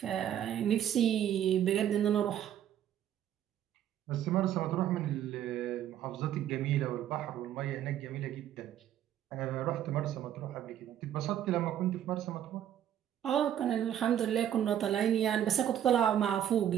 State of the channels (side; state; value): left; quieter; 10.7 dB